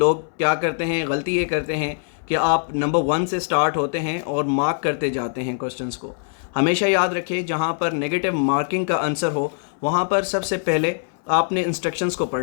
क्या करते हैं, गलती ये करते हैं कि आप नंबर 1 से स्टार्ट होते हैं और मार्क करते जाते हैं क्वेश्चंस को। हमेशा याद रखें, जहाँ पर नेगेटिव मार्किंग का आंसर हो वहाँ पर सबसे पहले आपने इंस्ट्रक्शंस को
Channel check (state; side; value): silent; right; 64 dB below the other